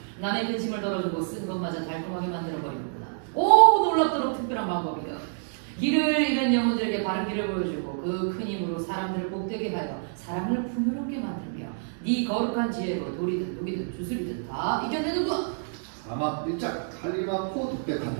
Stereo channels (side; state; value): left; silent; digital silence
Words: 남의 근심을 덜어주고 쓴 것마저 달콤하게 만들어버리는구나. 놀랍도록 특별한 방법이다. 길을 잃은 영혼들에게 바른 길을 보여주고 그 큰 힘으로 사람들을 복되게 하여 사랑을 풍요롭게 만들며 네 거룩한 지혜로 돌이든 독이든 주술이든 다 이겨내는구나. 사막 일장 칼리마코